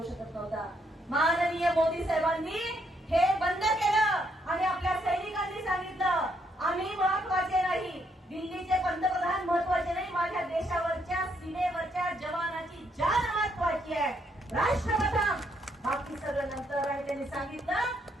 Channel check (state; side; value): normal; both; correlation 0.74